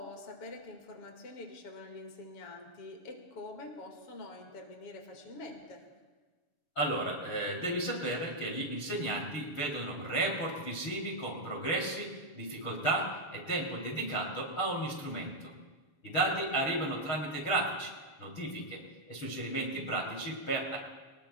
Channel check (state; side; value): late; right; 6.9 ms